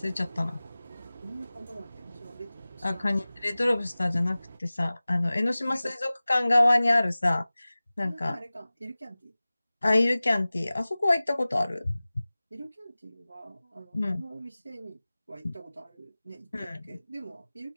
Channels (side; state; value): both; inverted; correlation -0.98